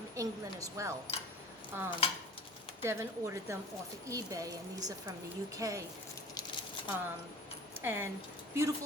England as well. Devin ordered them off of eBay, and these are from the UK. And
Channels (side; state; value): both; normal; correlation 0.40